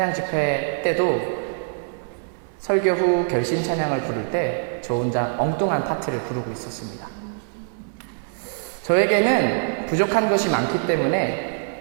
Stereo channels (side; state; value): left; silent; digital silence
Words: 집회 때도 설교 후 결신 찬양을 부를 때 저 혼자 엉뚱한 파트를 부르고 있었습니다. 저에게는 부족한 것이 많기